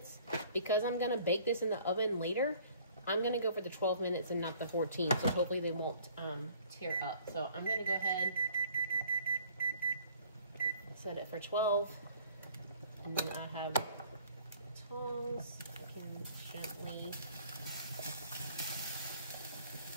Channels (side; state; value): both; inverted; correlation -0.56